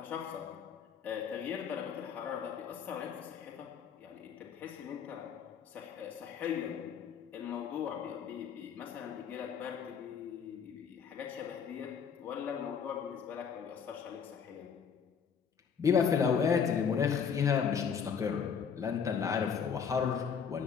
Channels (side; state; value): right; quieter; 6.9 dB